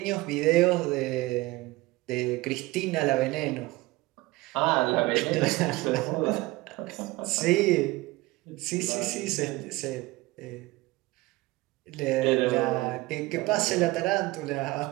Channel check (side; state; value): left; quieter; 20.4 dB